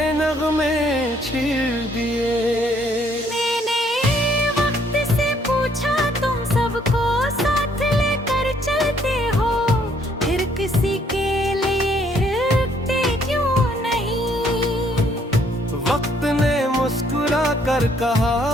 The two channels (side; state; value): both; normal; correlation 0.66